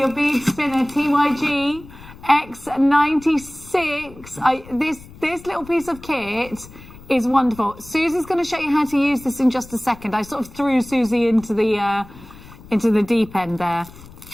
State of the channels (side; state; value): left; noise; rumble, 19 dB below the sound